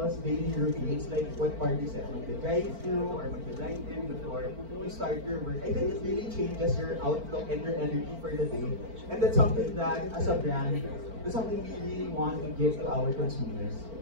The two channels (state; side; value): late; left; 4.4 ms